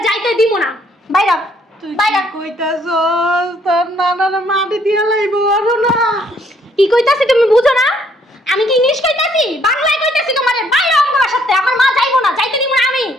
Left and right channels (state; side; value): normal; both; correlation 0.67